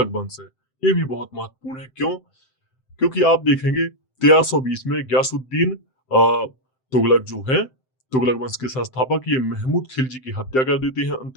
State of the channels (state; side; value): late; right; 7.7 ms